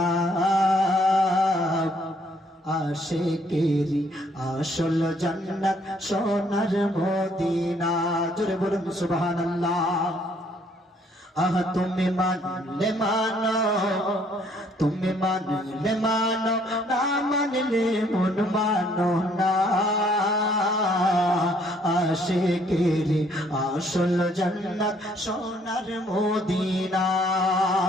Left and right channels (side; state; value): both; normal; correlation 0.65